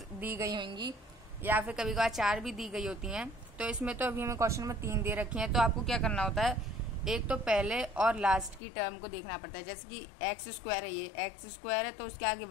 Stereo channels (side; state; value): right; drops out; at 8.6 s